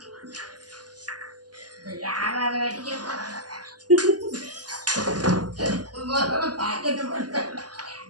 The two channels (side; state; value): left; late; 0.69 ms